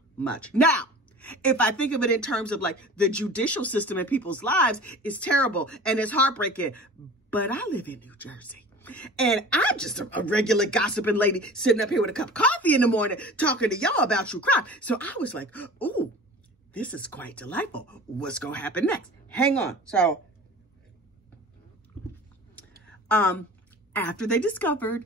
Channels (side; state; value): both; normal; correlation 0.40